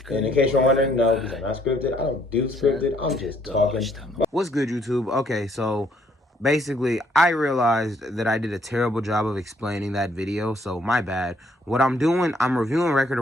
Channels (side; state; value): both; normal; correlation 0.67